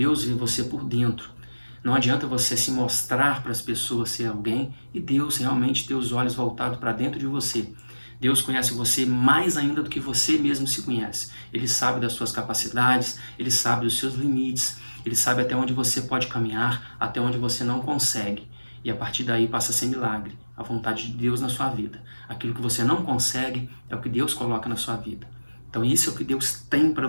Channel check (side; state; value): both; inverted; correlation -1.00